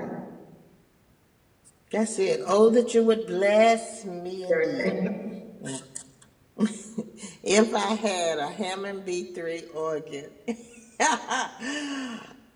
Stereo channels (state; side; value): identical; both; correlation 1.00